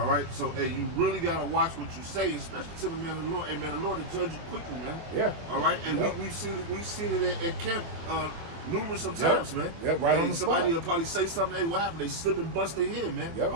right. So hey, you really gotta watch what you say, especially to the man of the Lord. Hey, man, the Lord will judge you quickly, man. Yeah. All right. And Yep. we seen it at camp numerous of times, man. Yep, right on the somebody spot. will probably say something, hey, what happened? They slip and bust their head, man. Yep.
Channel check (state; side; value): late; left; 24 ms